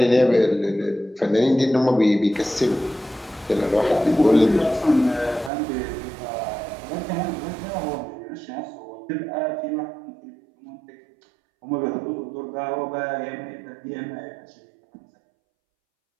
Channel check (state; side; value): drops out; left; at 5.5 s